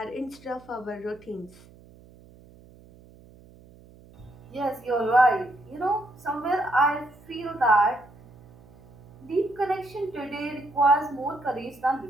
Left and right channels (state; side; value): noise; right; hum, 23 dB below the sound